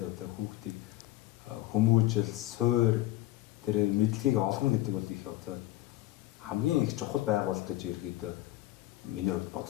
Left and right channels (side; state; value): right; quieter; 16.5 dB